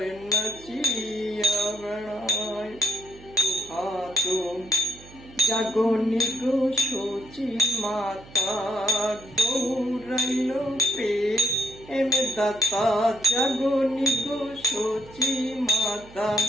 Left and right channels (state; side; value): noise; right; hum, 20 dB below the sound